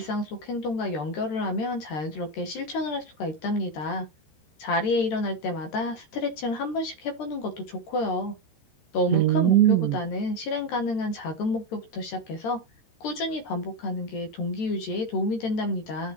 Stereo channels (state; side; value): late; right; 13 ms